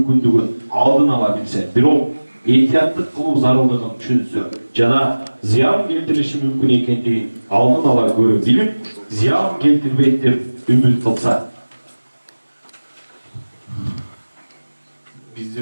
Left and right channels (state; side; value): inverted; both; correlation -1.00